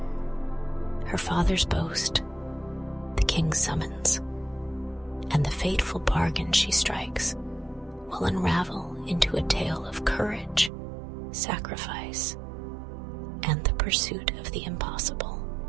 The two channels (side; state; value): left; drops out; at 10.7 s